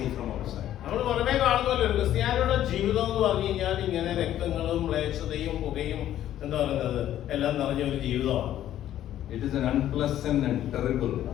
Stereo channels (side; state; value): right; quieter; 12.1 dB